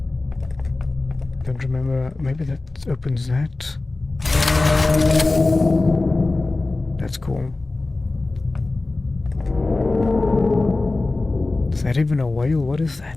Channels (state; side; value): quieter; right; 3.2 dB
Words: Don't remember. Maybe that opens that. That's cool. Is that even a whale? What is